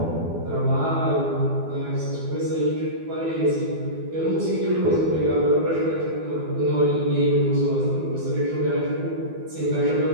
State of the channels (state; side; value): late; left; 12 ms